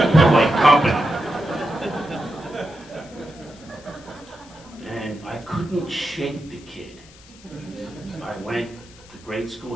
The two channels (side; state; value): left; noise; hiss, 23 dB below the sound